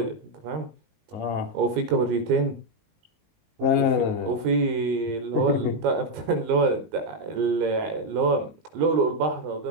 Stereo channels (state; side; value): late; left; 19 ms